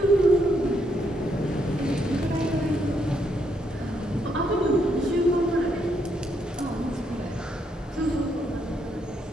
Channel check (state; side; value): normal; both; correlation 0.75